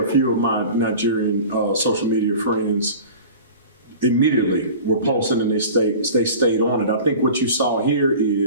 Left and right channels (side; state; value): both; inverted; correlation -0.39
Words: few of my Nigerian social media friends immediately were posting and they stayed on it. I think what you saw here